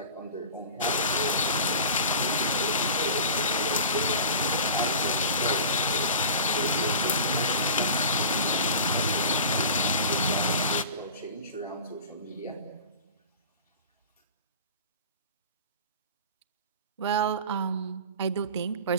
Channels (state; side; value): inverted; both; correlation -0.37